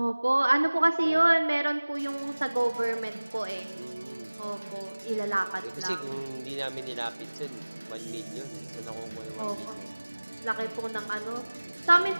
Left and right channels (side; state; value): both; inverted; correlation -1.00